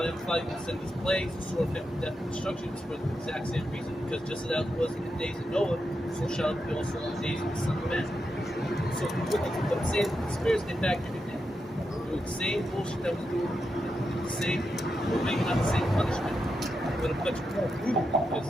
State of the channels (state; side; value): normal; both; correlation 0.85